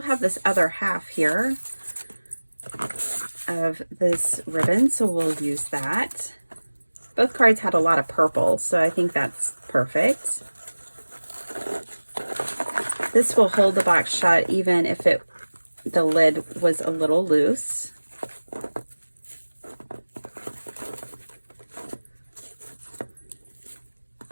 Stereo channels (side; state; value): both; inverted; correlation -1.00